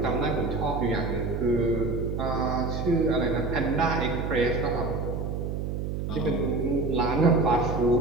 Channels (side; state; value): right; noise; hum, 3 dB below the sound